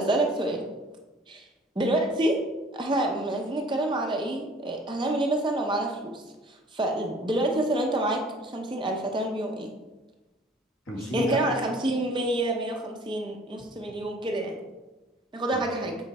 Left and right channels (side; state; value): both; normal; correlation 0.51